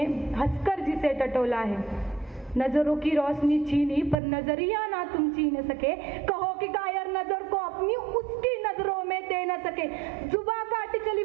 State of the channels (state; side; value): drops out; left; at 4.2 s